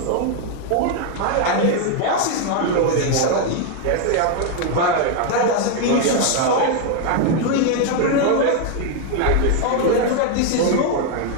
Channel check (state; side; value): different; both; correlation 0.01